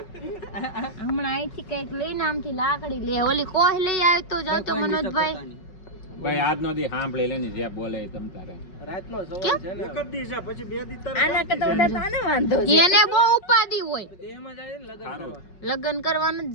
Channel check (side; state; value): right; late; 5.4 ms